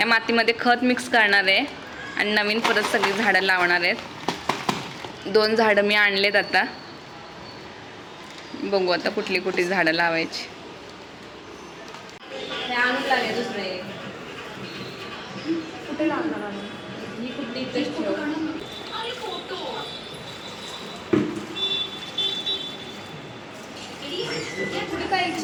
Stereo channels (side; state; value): both; identical; correlation 1.00